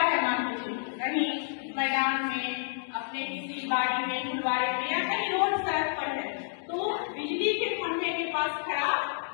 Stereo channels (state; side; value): silent; right; digital silence